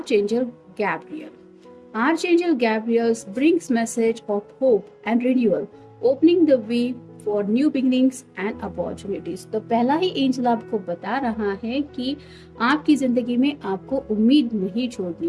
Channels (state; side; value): identical; both; correlation 1.00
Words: Gabriel. Archangel Gabriel brings message of hope and renewal, opening the way for new beginnings and opportunities। तो पहला ही एंजल आपको बता रहा है कि आपकी जिंदगी में आपको उम्मीद नहीं